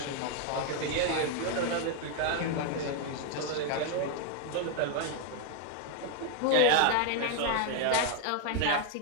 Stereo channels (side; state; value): both; different; correlation 0.00